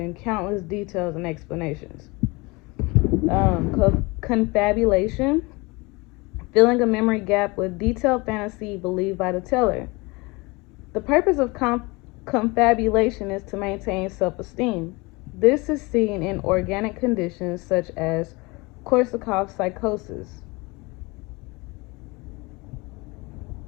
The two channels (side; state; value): right; quieter; 25.3 dB